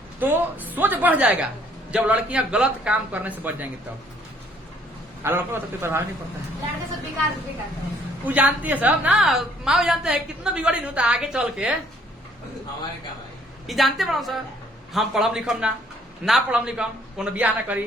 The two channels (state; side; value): normal; both; correlation 0.63